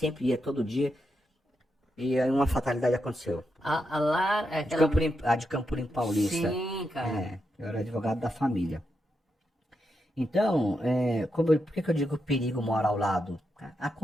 ia, todo dia. E aí uma fatalidade aconteceu. A Lara... é De aquela... a de Campo Limpo Paulista. Sim, cara. Eu era advogado da família. Então, por que que eu digo que o perigo mora ao lado?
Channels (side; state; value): both; normal; correlation 0.85